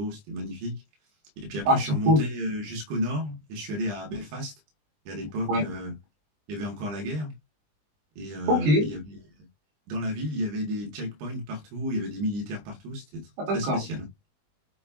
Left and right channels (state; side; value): late; left; 20 ms